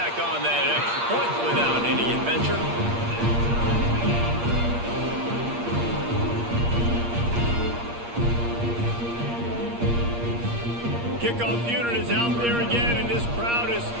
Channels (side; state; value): left; late; 8.5 ms